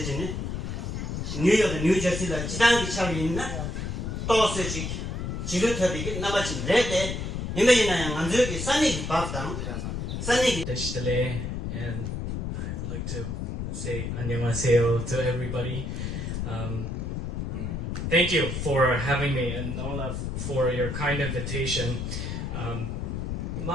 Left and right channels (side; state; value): left; noise; rumble, 4 dB below the sound